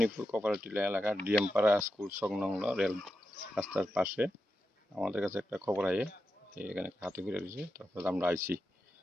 cooperative এলাকা ডিএমপাড়া school সংলগ্ন rail রাস্তার পাশে আমাদের কাছে একটা খবর আয়ে এখানে হাতি পড়ে রয়েছে। তারপর আমরা আইছি,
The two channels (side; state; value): both; normal; correlation 0.88